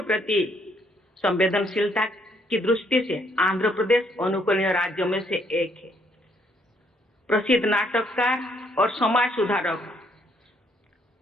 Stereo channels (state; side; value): normal; both; correlation 0.69